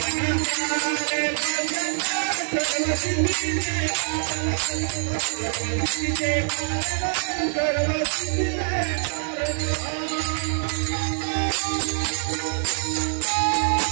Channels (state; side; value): silent; left; digital silence